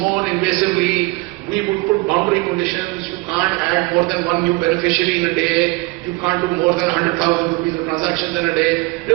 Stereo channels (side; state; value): left; quieter; 24.1 dB